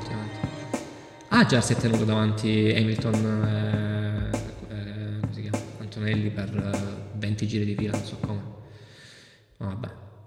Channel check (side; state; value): both; identical; correlation 1.00